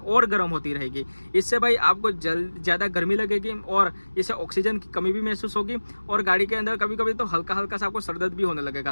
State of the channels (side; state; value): both; inverted; correlation -1.00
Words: गर्म होती रहेगी। इससे भाई आपको ज़्यादा गर्मी लगेगी और इससे ऑक्सीजन की कमी भी महसूस होगी और गाड़ी के अंदर कभी कभी तो हल्का हल्का सा आपको सरदर्द भी होने